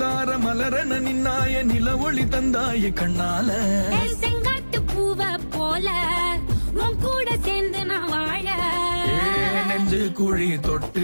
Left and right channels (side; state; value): both; inverted; correlation -1.00